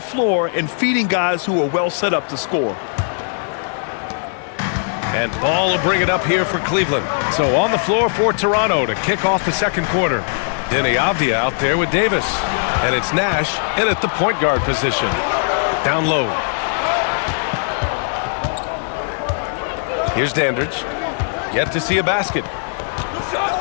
floor and feeding guys who are well set up to score. And Ball will bring it up here for Cleveland. So on the floor for Toronto to kick off the second quarter. Denny Avdia out there with Davis. And it's Nash in at the point guard position. Down low. Here's Dandridge. Yet to see a basket.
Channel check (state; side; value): silent; right; digital silence